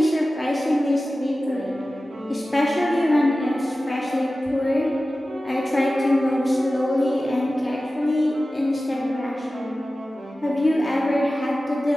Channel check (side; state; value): both; normal; correlation 0.95